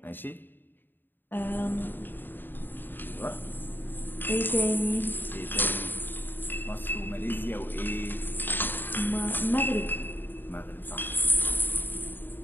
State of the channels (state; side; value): late; right; 0.094 ms